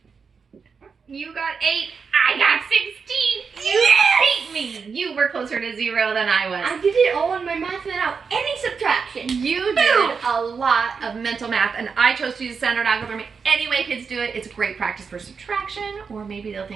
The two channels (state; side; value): quieter; left; 5.6 dB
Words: You got 8. I got 16. You beat me. You were closer to 0 than I was. I did it all in my math without any subtraction. You did a lot of mental math, and I chose to use standard algebra. Any way kids do it, it's great practice for subtraction, or maybe they'll